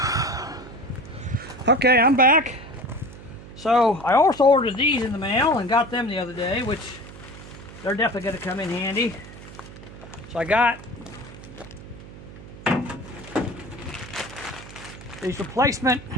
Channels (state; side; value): noise; right; hum, 16 dB below the sound